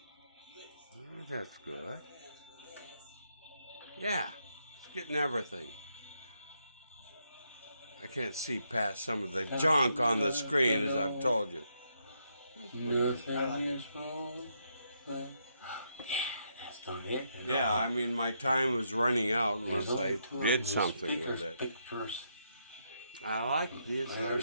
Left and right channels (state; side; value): inverted; both; correlation -0.78